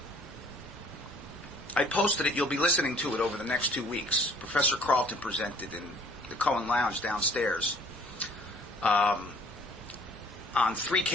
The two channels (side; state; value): both; normal; correlation 0.56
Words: I posted it. You'll be listening to it over the next 2 weeks. Professor Carlton presented in the Cohen Lounge downstairs on 3